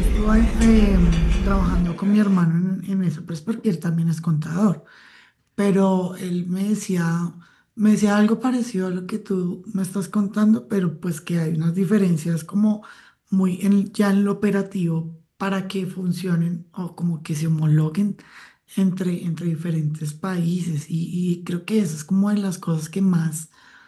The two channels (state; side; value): identical; both; correlation 1.00